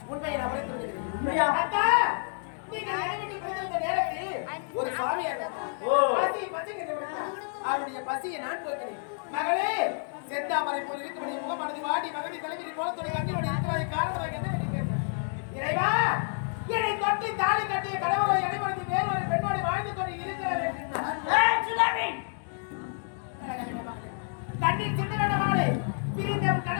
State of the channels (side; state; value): right; silent; digital silence